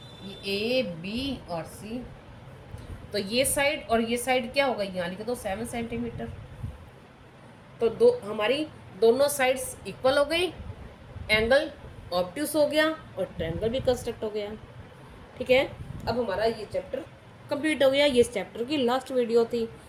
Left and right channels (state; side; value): identical; both; correlation 1.00